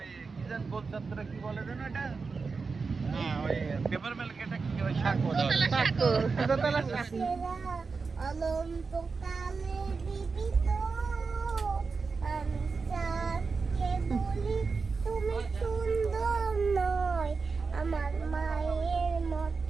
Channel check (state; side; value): quieter; left; 4.6 dB